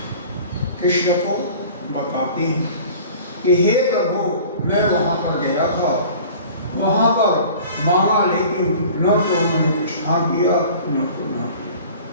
कृष्ण को बताते हैं कि हे प्रभु, मैं वहां पर गया था, वहां पर मांगा, लेकिन न तो उन्होंने कुछ हाँ किया न तो ना किया।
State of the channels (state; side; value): inverted; both; correlation -0.45